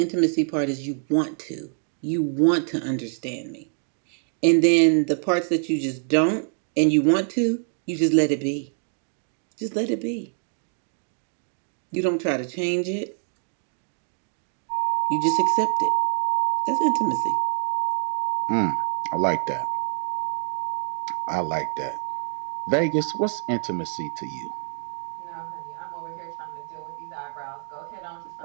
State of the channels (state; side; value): silent; left; 60 dB below the other